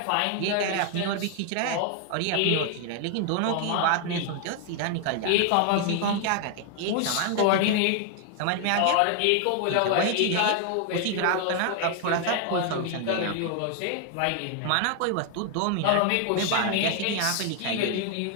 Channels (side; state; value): both; different; correlation 0.00